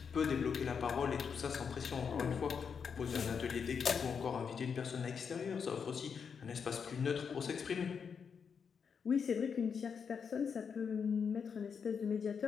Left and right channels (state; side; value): quieter; right; 6.5 dB